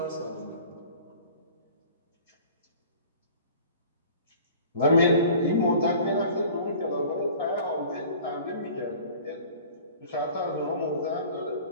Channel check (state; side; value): inverted; both; correlation -0.46